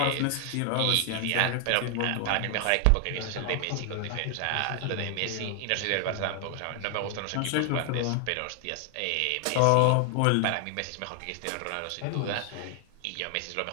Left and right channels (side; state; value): both; different; correlation 0.00